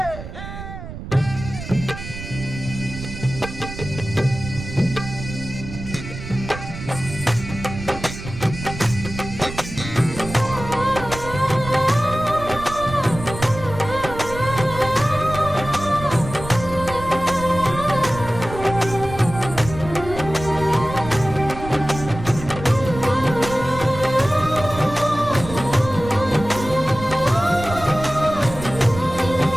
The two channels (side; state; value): right; noise; rumble, 11 dB below the sound